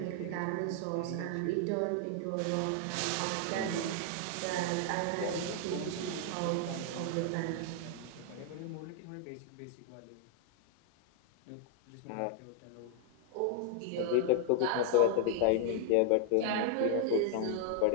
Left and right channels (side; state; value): both; different; correlation 0.00